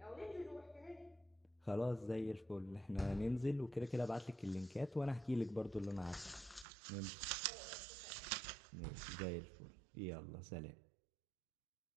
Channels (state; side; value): drops out; left; at 6.7 s